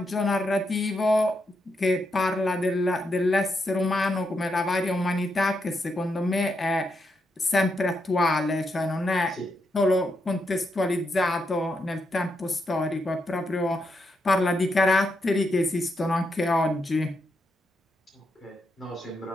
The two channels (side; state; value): both; normal; correlation 0.82